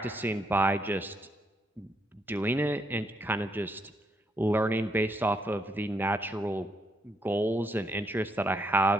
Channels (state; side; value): normal; both; correlation 0.75